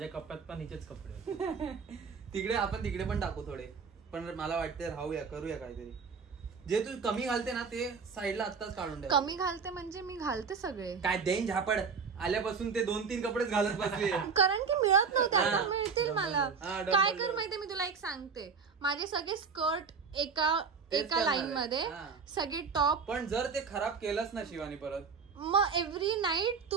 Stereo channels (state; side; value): quieter; left; 5.6 dB